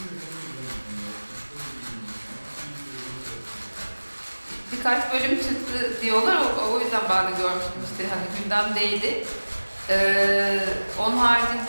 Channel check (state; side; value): inverted; both; correlation -1.00